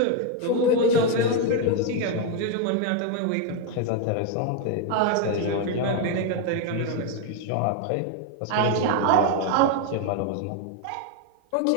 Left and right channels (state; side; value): different; both; correlation 0.01